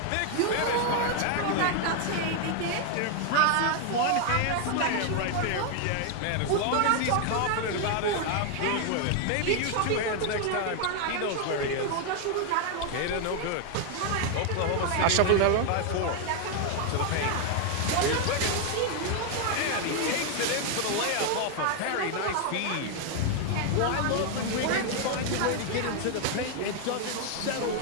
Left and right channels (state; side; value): different; both; correlation 0.00